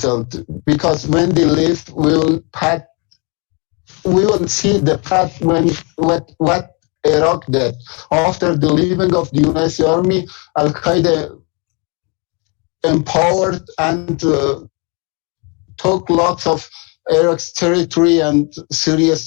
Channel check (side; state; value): right; quieter; 32.7 dB